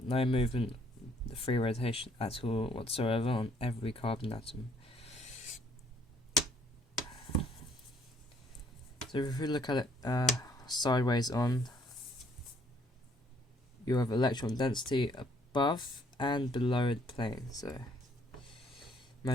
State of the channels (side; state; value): both; normal; correlation 0.65